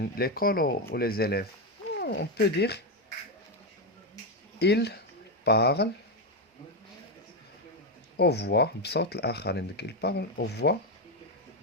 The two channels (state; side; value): normal; both; correlation 0.08